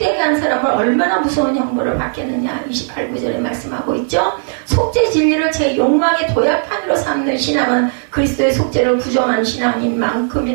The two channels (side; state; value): left; silent; digital silence